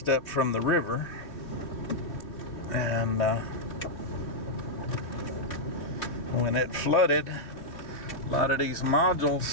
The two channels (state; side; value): late; right; 2.9 ms